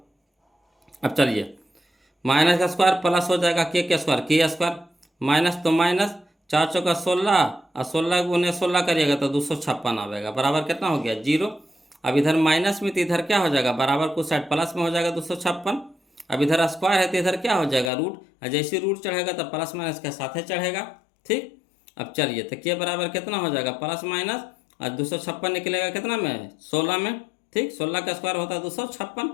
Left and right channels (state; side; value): drops out; right; at 17.9 s